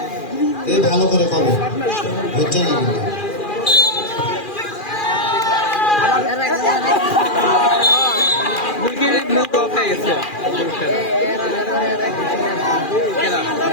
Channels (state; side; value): late; right; 2.4 ms